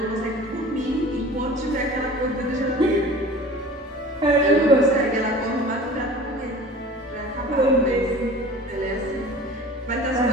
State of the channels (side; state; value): both; normal; correlation 0.42